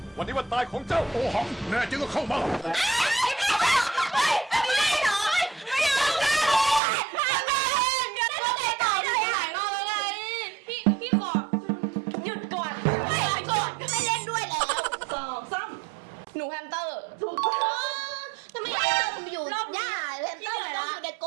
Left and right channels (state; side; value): drops out; left; at 6.8 s